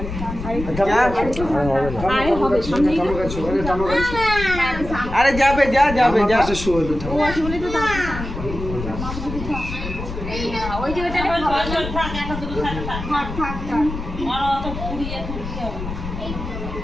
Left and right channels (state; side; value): noise; left; rumble, 7 dB below the sound